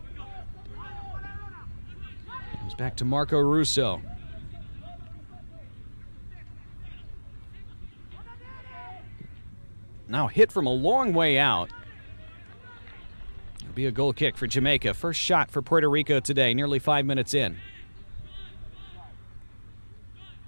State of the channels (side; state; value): both; inverted; correlation -1.00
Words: Comes back to Marco Russo. Now hit from a long way out. It'll be a goal kick for Jamaica. First shot for Puerto Rico today, nearly 5 minutes in.